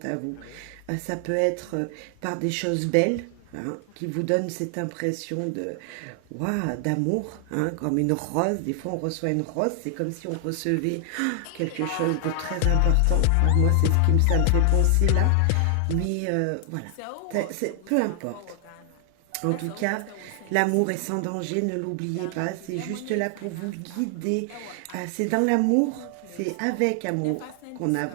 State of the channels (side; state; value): both; different; correlation 0.00